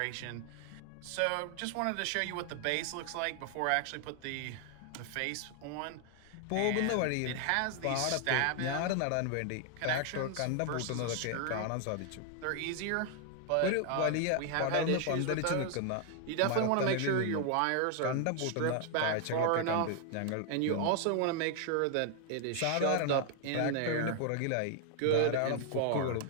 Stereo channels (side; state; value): both; different; correlation 0.00